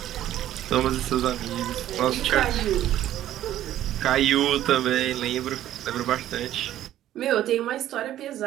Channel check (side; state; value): left; quieter; 12.6 dB